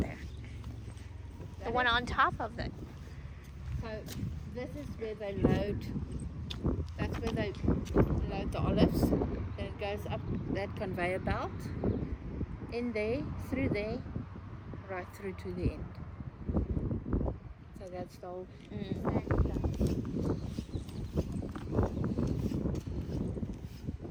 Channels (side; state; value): both; identical; correlation 1.00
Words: The one on top of it. So this is where they load. That's where they load the olives. Then it goes up that conveyor belt, in there, through there, right through to the end. So that's the whole.